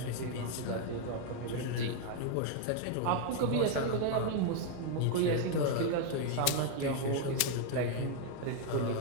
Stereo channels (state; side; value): different; both; correlation 0.00